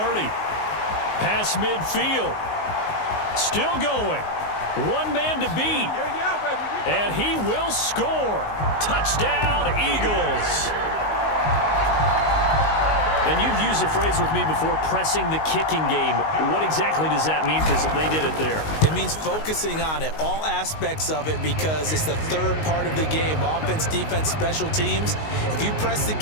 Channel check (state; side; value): late; right; 19 ms